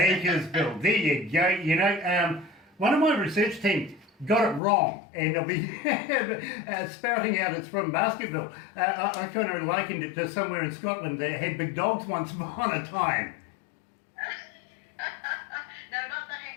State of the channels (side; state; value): right; drops out; at 4.6 s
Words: there you go. You know, one of my research team got it wrong, and they'll be spouting out it's from Baskerville. I kind of likened it to somewhere in Scotland that had big dogs once upon a time. No, not the